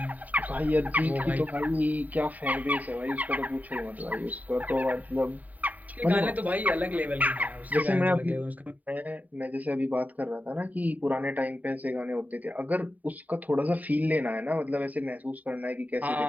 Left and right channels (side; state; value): left; late; 0.076 ms